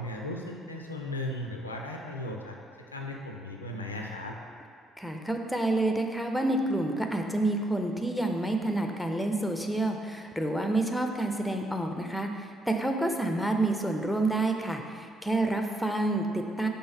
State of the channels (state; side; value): normal; both; correlation 0.75